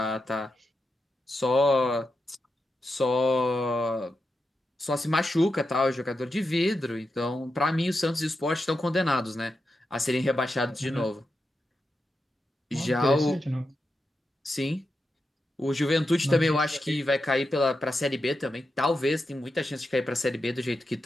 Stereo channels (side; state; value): both; normal; correlation 0.88